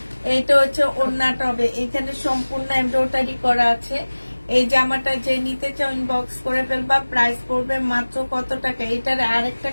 এইটা হচ্ছে ওড়নাটা হবে, এখানে সম্পূর্ণ এমব্রয়ডারি করা আছে। এই জামাটা যে নিতে চাও ইনবক্স করে ফেলবা, প্রাইস পড়বে মাত্র কত টাকা। এটার আরেকটা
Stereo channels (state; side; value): inverted; both; correlation -1.00